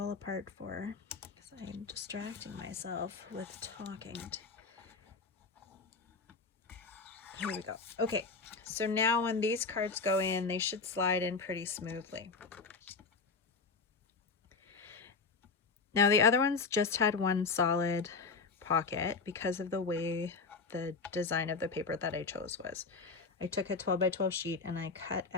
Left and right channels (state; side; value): quieter; right; 4.5 dB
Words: apart for because I'm distracting myself with talking. Here we go. Okay, so now when these cards go in, they should slide in pretty smoothly. Now the other ones just had one solid pocket because of the way the design of the paper that I chose was. I took a 12 by 12 sheet and I cut